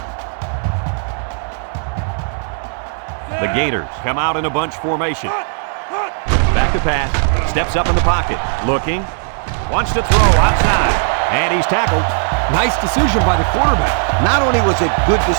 The Gators come out in a bunch formation. Back to pass. Steps up in the pocket. Looking. Wants to throw outside. And he's tackled. Nice decision by the quarterback. Not only was it good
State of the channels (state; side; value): silent; left; 66 dB below the other